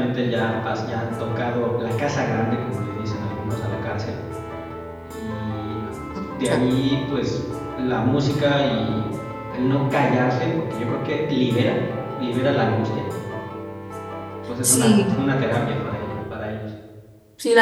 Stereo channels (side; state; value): both; identical; correlation 1.00